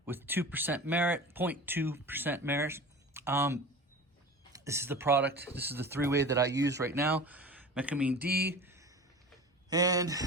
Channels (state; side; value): normal; both; correlation 0.35